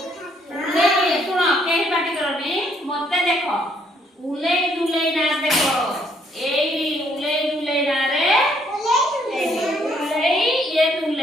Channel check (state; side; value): normal; both; correlation 0.68